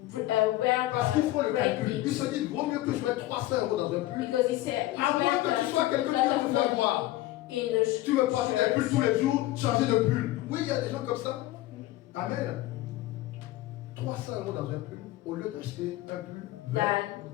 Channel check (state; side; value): quieter; right; 16.3 dB